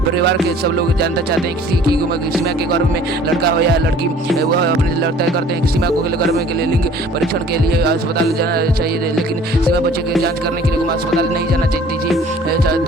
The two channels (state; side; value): normal; both; correlation 0.51